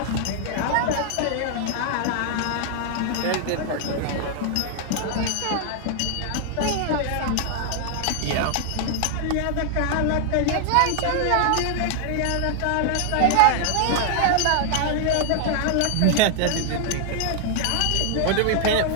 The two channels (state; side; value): different; both; correlation 0.00